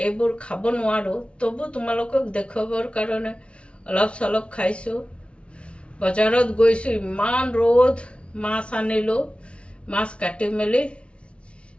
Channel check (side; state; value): right; late; 0.060 ms